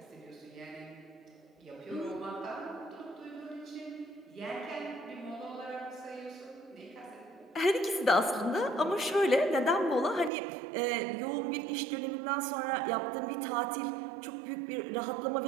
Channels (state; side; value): drops out; left; at 10.3 s